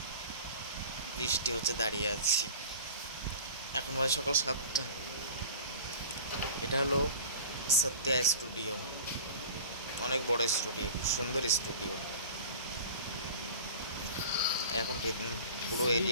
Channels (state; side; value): inverted; both; correlation -0.38